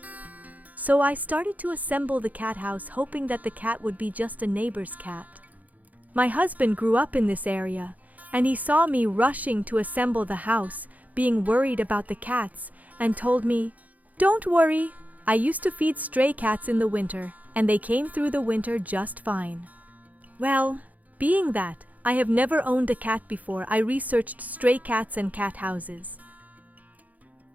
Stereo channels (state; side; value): late; left; 0.077 ms